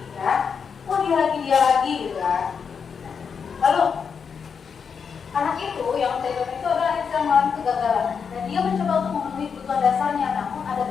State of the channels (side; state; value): right; quieter; 6.3 dB